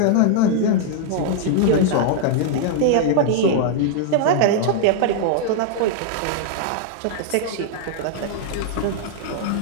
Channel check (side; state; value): both; different; correlation -0.01